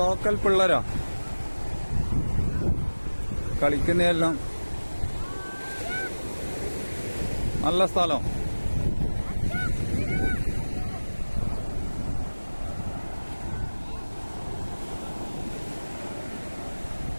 ലോക്കൽ പിള്ളേരാ കളിക്കുന്നതെല്ലാം. നല്ല സ്ഥലം.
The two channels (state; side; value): inverted; both; correlation -1.00